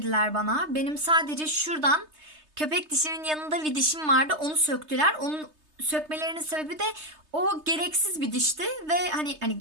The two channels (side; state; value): left; late; 3.3 ms